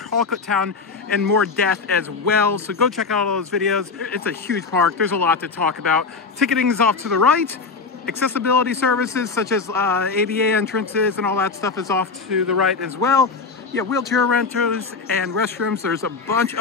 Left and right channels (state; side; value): quieter; right; 4.7 dB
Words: Town and more death as well. So go check out all those videos. It's a huge park. There's a lot to talk about. Ticketing is off to the right. Accessibility services such as ADA entrances and all that stuff is off to the right as well. Yeah, wheelchair rentals and restrooms. There's a bunch